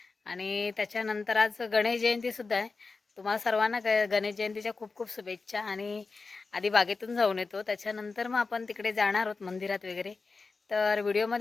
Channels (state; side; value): quieter; right; 4.2 dB